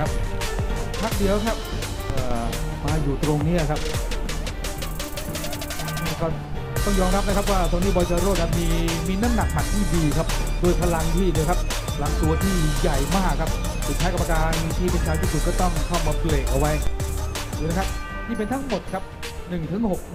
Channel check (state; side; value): identical; both; correlation 1.00